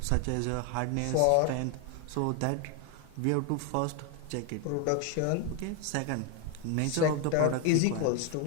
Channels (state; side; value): different; both; correlation 0.01